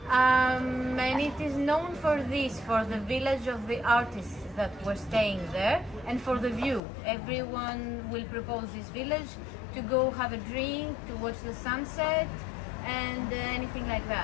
and it is known for this, for the village of the artists that were staying there, and for the view. Everyone will propose this village to go have a drink, to watch the sunset, and anything like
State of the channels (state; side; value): drops out; right; at 6.8 s